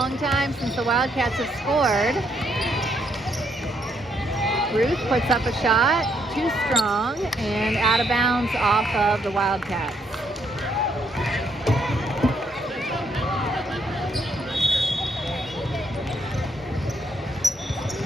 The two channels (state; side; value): normal; both; correlation 0.73